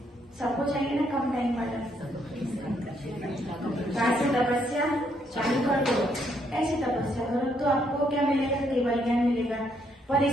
सबको चाहिए ना कम टाइम वाला। कैसे तपस्या चालू कर दो, ऐसे तपस्या करो तो आपको क्या मिलेगा, केवल ज्ञान मिलेगा। पर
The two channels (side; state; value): both; normal; correlation 0.72